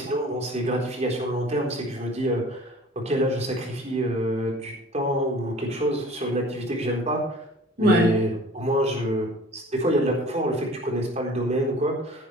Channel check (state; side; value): normal; both; correlation 0.46